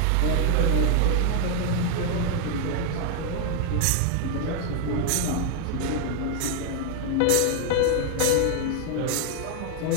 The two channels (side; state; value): both; different; correlation 0.00